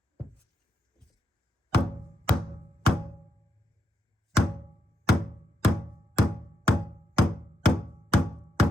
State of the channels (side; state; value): both; normal; correlation 0.81